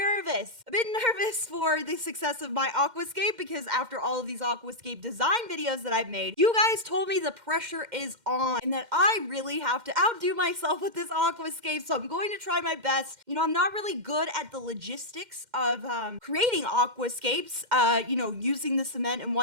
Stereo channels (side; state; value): left; late; 2.1 ms